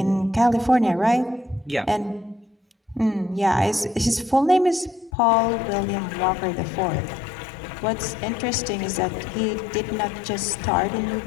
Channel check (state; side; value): drops out; right; at 5.1 s